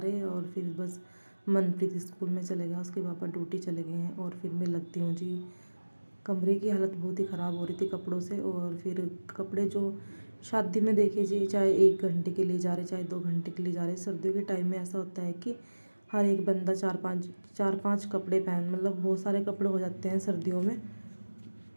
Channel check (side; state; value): both; inverted; correlation -1.00